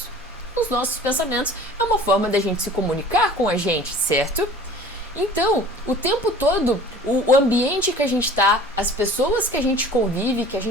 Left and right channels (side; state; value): both; normal; correlation 0.45